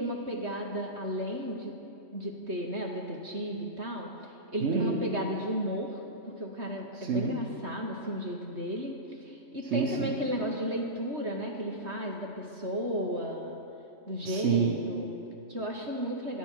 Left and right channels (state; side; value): late; left; 3.2 ms